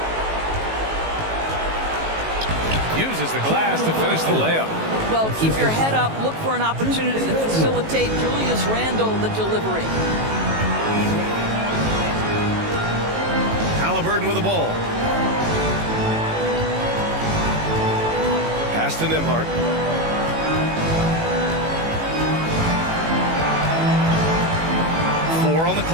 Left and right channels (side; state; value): left; late; 18 ms